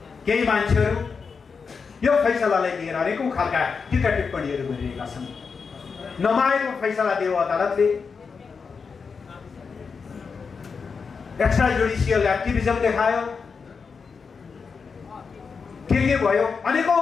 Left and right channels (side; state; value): right; quieter; 5.4 dB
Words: केही मान्छेहरू यो फैसलालाई लिएर अनेकौं खालका टीका टिप्पणीहरू गरिरहेका छन्। नमाएको फैसला दियो अदालतले, एक्स्ट्रा जुडिसियल एक्टिभिजम देखायो, के भयो,